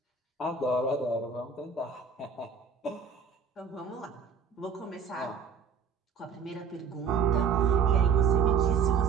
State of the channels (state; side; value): quieter; left; 6.1 dB